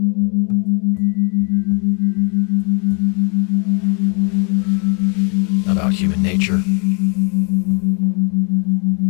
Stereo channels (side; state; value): right; quieter; 37.1 dB